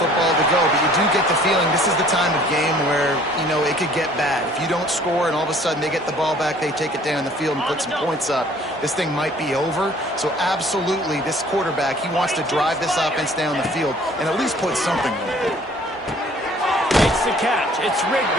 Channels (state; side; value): normal; both; correlation 0.54